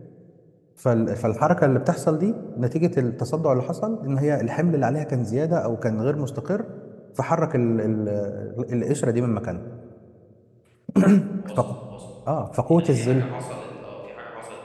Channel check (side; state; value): both; identical; correlation 1.00